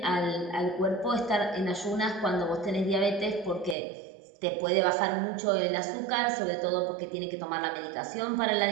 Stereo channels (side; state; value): left; drops out; at 3.8 s